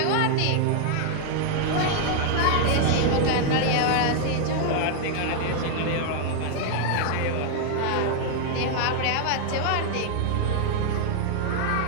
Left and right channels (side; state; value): both; different; correlation 0.00